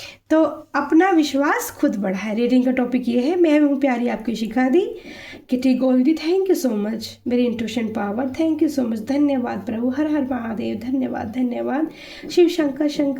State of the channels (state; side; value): identical; both; correlation 1.00